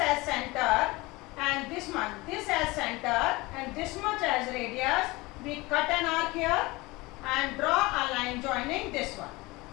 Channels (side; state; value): right; quieter; 22.4 dB